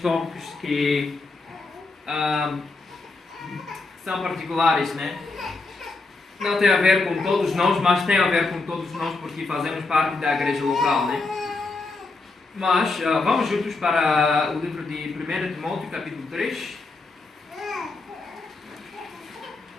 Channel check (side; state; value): right; quieter; 3.6 dB